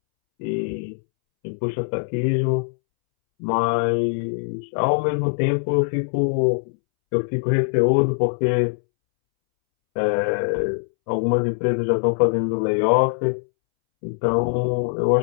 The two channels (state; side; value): silent; right; 64 dB below the other